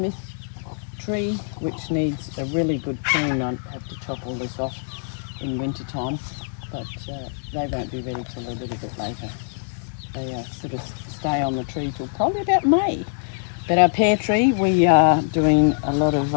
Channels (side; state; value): right; silent; digital silence